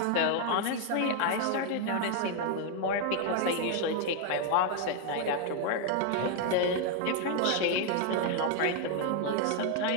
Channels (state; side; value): different; both; correlation 0.00